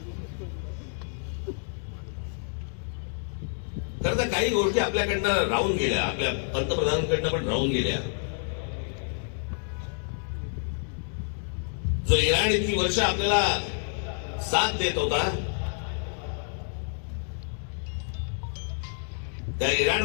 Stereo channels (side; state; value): right; silent; 59 dB below the other